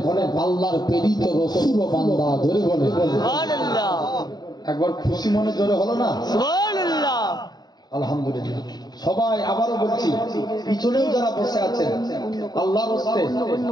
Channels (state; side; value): late; right; 0.20 ms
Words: হলেন আল্লাহর প্রেরিত রাসূল ও বান্দা। ধরে বলে সুবহানাল্লাহ। একবার খুশি মনে জোরে হলো না? সুবহানাল্লাহ, আলহামদুলিল্লাহ। সবাই আবারও বলছি, পিছনেও যারা বসে আছেন আল্লাহর হস্তে